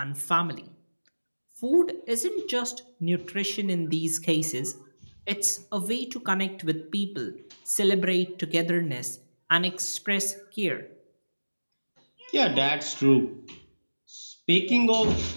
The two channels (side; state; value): both; inverted; correlation -1.00